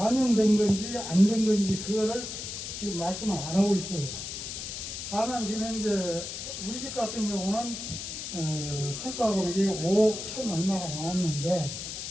건지 안 된 건지 그거를 지금 말씀을 안 하고 있어요. 다만 지금 현재 우리 집 같은 경우는 평가 금액이 5억 1천 얼마가 나왔는데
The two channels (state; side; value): noise; left; hiss, 7 dB below the sound